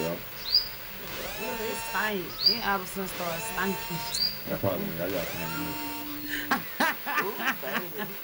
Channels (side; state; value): both; identical; correlation 1.00